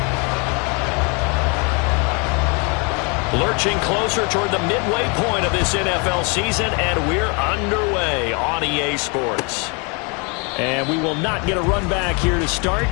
Lurching closer toward the midway point of this NFL season, and we're underway on EA Sports. And we will not get a run back here to start.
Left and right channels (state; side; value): quieter; right; 32.9 dB